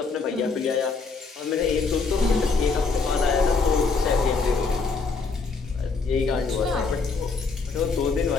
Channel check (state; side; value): quieter; right; 4.5 dB